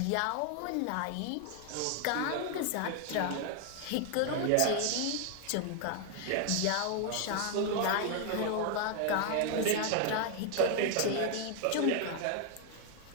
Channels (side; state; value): both; different; correlation 0.00